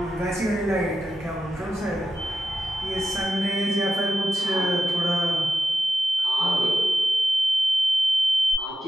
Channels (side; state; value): both; normal; correlation 0.91